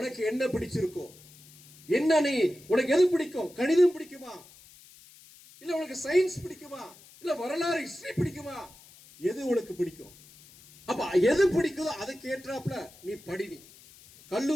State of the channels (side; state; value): left; noise; hiss, 23 dB below the sound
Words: என்ன பிடிச்சிருக்கோ, என்ன நீ உனக்கு எது பிடிக்கும், கணிதம் பிடிக்குமா, இல்ல உனக்கு சயின்ஸ் பிடிக்குமா, இல்ல வரலாறு ஹிஸ்டரி பிடிக்குமா, எது உனக்கு பிடிக்கும், அப்ப எது பிடிக்குதோ அதுக்கு ஏற்றாப்புல நீ படி, நீ